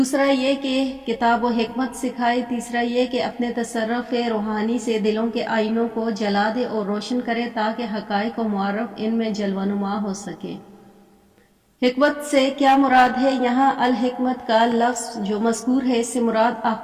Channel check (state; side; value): identical; both; correlation 1.00